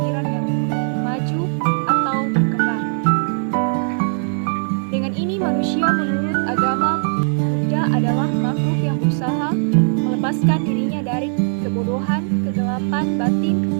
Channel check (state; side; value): silent; left; digital silence